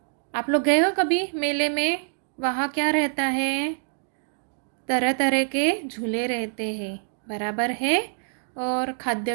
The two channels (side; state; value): left; silent; digital silence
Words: आप लोग गए हो कभी मेले में? वहाँ क्या रहता है? तरह तरह के झूले रहते हैं, बराबर है। और